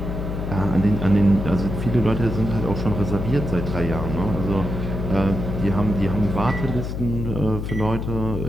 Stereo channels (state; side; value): noise; left; hum, 4 dB below the sound